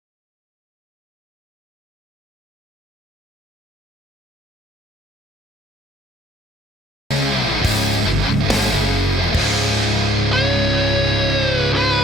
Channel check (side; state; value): both; normal; correlation 0.61